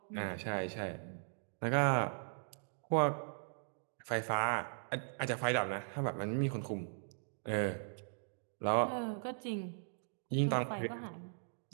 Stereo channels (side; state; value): left; silent; digital silence